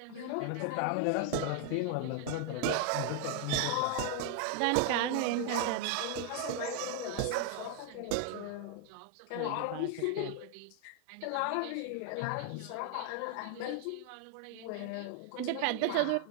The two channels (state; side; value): different; both; correlation 0.00